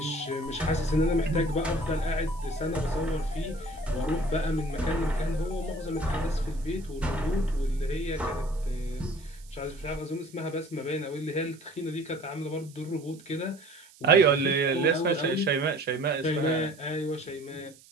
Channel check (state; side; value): noise; right; hiss, 24 dB below the sound